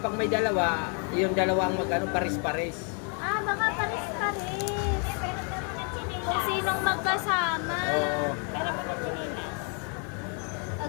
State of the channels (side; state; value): right; quieter; 39.4 dB